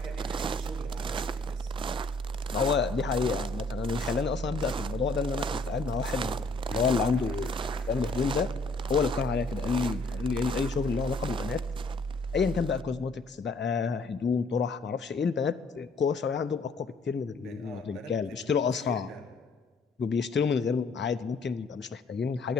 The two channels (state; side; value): quieter; right; 3.1 dB